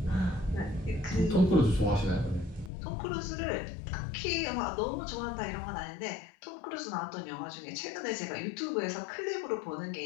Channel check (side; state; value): right; drops out; at 2.7 s